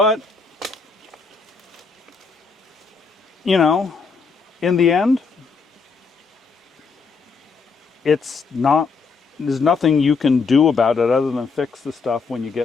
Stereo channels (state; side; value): quieter; right; 4.8 dB